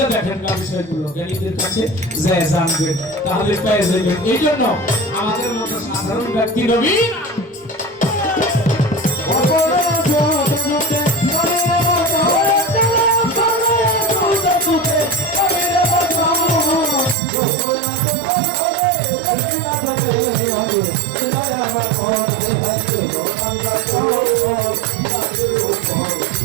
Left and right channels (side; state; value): left; drops out; at 17.2 s